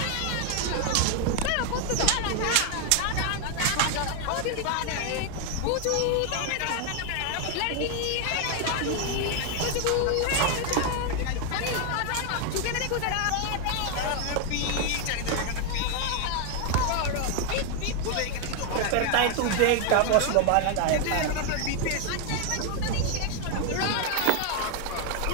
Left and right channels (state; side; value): different; both; correlation 0.01